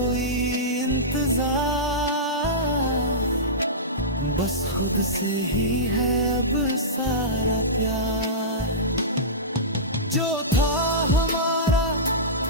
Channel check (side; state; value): both; normal; correlation -0.18